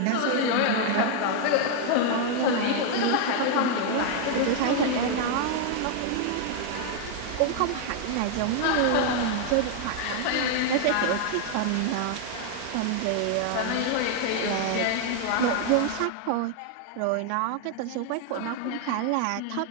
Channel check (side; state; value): both; different; correlation 0.00